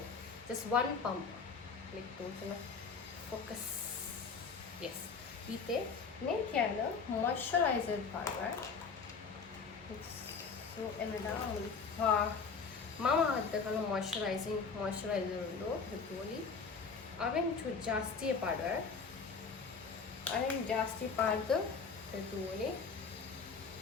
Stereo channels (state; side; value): quieter; right; 5.2 dB